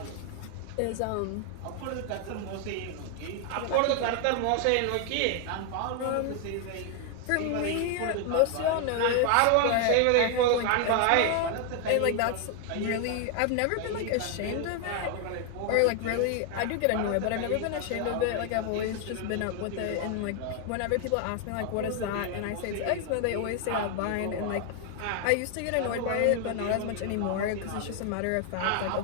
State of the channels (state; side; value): different; both; correlation 0.00